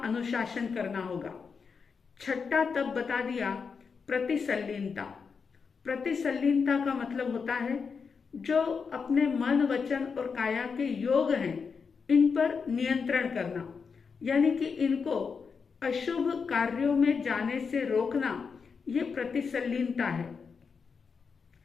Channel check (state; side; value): quieter; right; 5.6 dB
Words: अनुशासन करना होगा। 6ठा तप बता दिया प्रतिसल्लीनता। प्रतिसल्लीनता का मतलब होता है जो अपने मन, वचन और काया के योग हैं इन पर नियंत्रण करना, यानी कि इनको अशुभ कार्यों में जाने से रोकना, ये प्रतिसल्लीनता है।